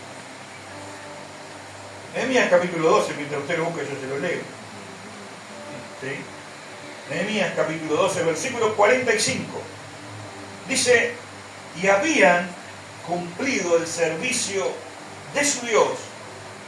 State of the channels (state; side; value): identical; both; correlation 1.00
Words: Nehemías capítulo 12, mientras usted lo busque yo se lo leo. ¿Sí? Nehemías capítulo 12, versículo 45. Dice, y habían cumplido el servicio de su Dios